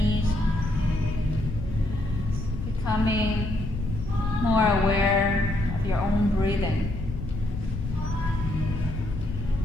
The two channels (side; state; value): left; noise; rumble, 6 dB below the sound